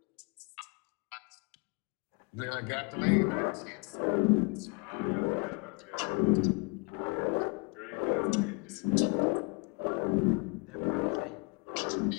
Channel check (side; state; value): right; quieter; 31.9 dB